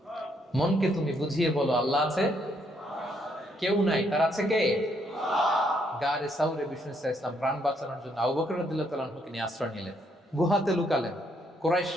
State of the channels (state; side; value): normal; both; correlation 0.72